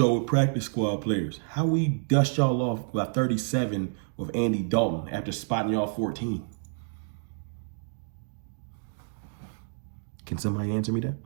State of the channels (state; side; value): silent; left; digital silence